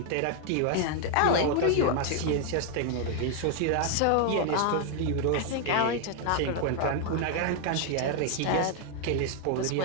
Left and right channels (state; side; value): different; both; correlation 0.00